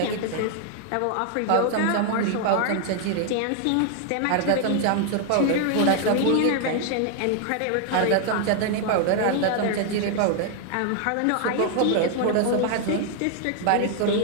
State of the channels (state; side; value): different; both; correlation 0.00